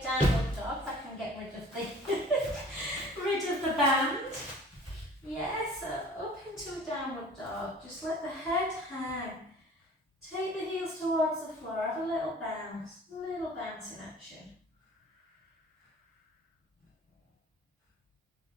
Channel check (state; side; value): normal; both; correlation 0.48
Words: downward dog. If I can get rid of the rid of the band. Yeah, so up into a downward dog. Just let the head hang. Take the heels towards the floor. Have a little bounce in action.